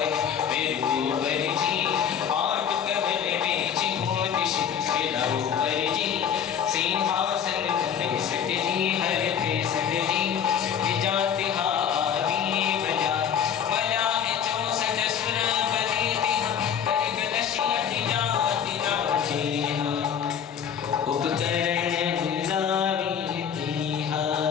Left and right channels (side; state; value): right; quieter; 8.2 dB